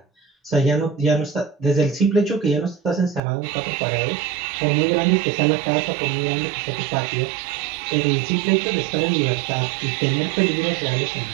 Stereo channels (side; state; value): left; drops out; at 3.2 s